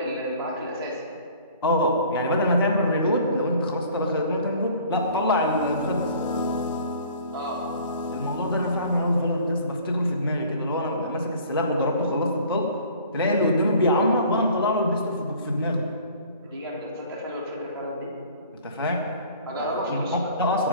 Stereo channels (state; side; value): inverted; both; correlation -0.50